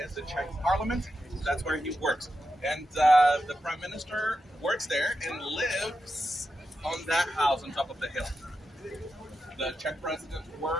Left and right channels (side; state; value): both; normal; correlation 0.88